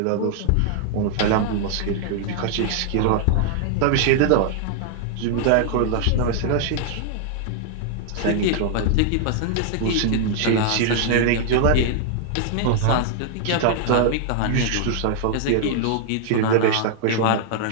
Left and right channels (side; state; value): both; different; correlation -0.01